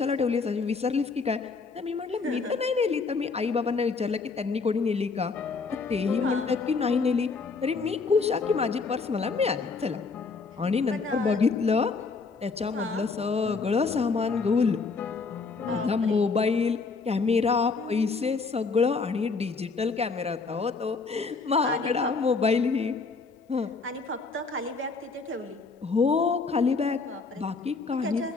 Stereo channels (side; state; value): right; quieter; 4.5 dB